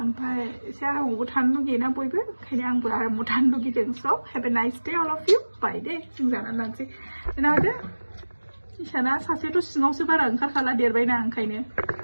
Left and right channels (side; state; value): both; inverted; correlation -1.00